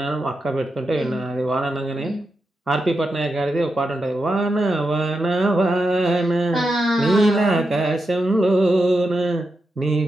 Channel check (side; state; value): both; normal; correlation 0.87